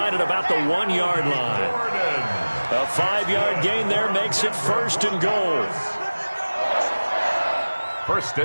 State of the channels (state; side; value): inverted; both; correlation -1.00